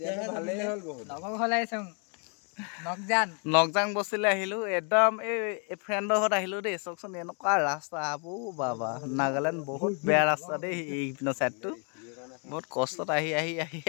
নকজাং বস্তিলৈ আহিলো একদম এই ফ্ৰেণ্ডৰ ঘৰত আহিলো দেই চাওকচোন এনেকুৱা ৰাস্তা আবু বাবা নাগালেণ্ড বহুত বেয়া ৰাস্তা দেই এইপিনৰ চাইডটো বহুত কষ্টত আহি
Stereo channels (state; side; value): quieter; right; 39.0 dB